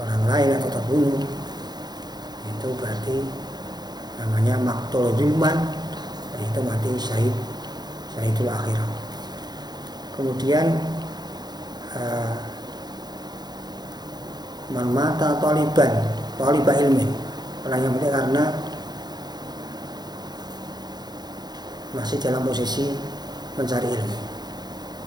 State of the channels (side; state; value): left; late; 0.20 ms